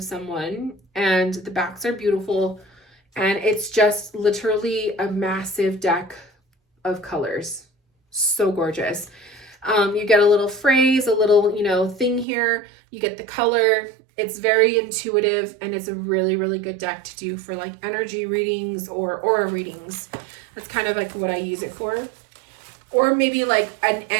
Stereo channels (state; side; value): drops out; left; at 12.2 s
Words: someone, and the backs are beautiful. And it's just literally a massive deck of colors. So gorgeous. You get a little phrase, a little, you know, thing here. You get the color. It's very intuitive, and it's a really, really good deck to do for like energy readings or aura readings. That's kind of like what I use it for. Or maybe like an